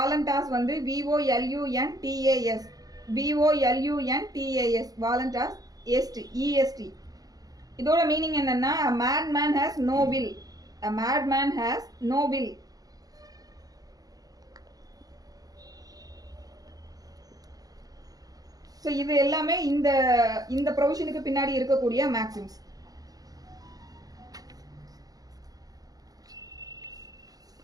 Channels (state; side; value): late; left; 0.18 ms